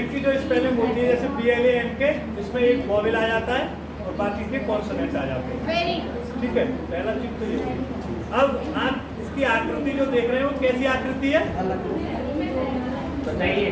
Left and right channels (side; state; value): both; identical; correlation 1.00